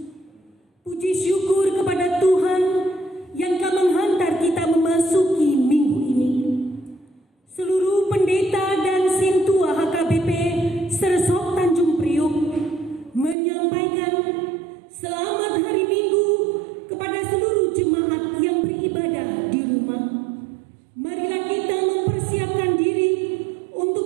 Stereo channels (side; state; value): left; drops out; at 13.4 s